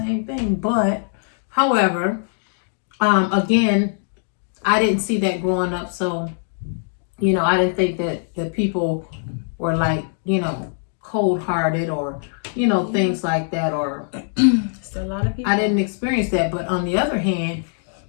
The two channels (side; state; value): right; silent; digital silence